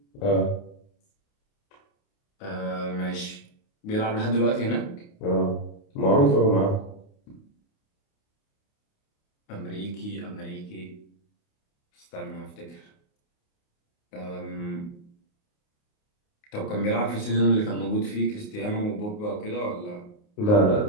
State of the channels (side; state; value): right; late; 29 ms